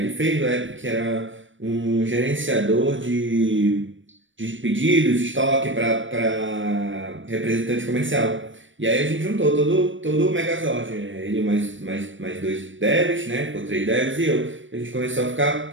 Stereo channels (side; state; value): left; late; 0.56 ms